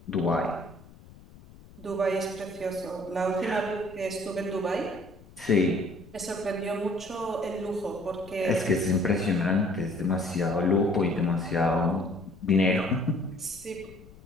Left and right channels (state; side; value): noise; left; rumble, 21 dB below the sound